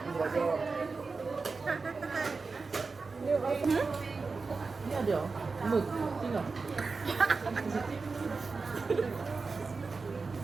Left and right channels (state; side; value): quieter; left; 4.3 dB